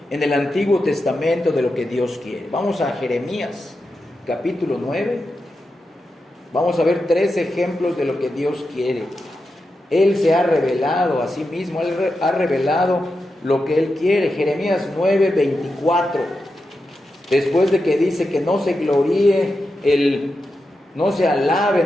en el Antiguo Testamento de lo que Dios quiere. Vamos a Jeremías, capítulo 9. Vamos a ver 3 ejemplos de lo que Dios quiere. Él se ha revelado a sí mismo, Él ha revelado lo que Él quiere. Jeremías 9, 24. Después de que dice que no se gloríe, no se alabe,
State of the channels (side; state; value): both; normal; correlation 0.89